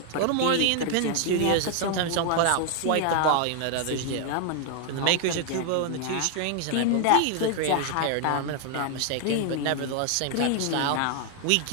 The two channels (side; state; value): both; different; correlation 0.00